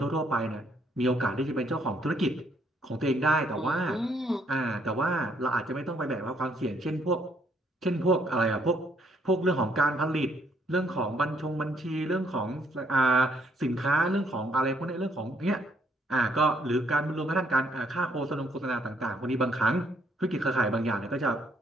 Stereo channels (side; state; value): both; normal; correlation 0.69